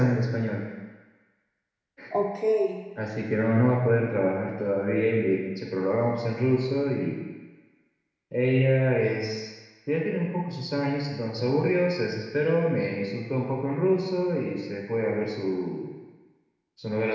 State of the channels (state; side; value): identical; both; correlation 1.00